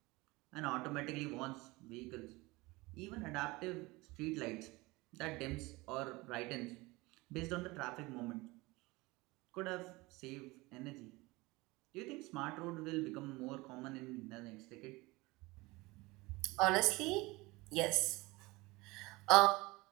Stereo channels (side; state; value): left; quieter; 22.4 dB